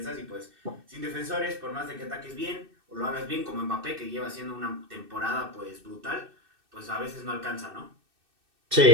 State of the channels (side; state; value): left; late; 2.6 ms